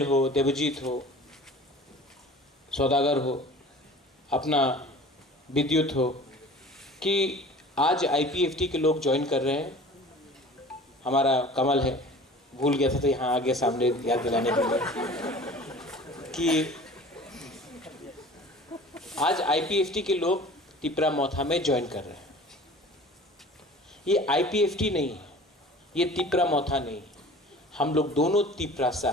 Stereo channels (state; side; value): normal; both; correlation 0.43